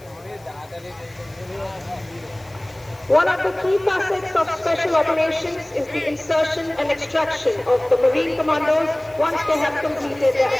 One of the key facets of special operations is the insertion and extraction of the Marine commandos once they have completed their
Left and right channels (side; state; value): left; noise; hiss, 27 dB below the sound